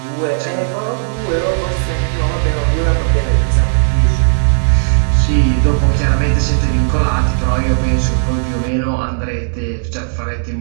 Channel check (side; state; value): left; silent; 64 dB below the other